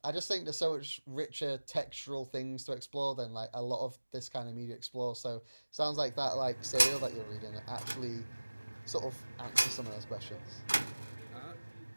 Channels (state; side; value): inverted; both; correlation -1.00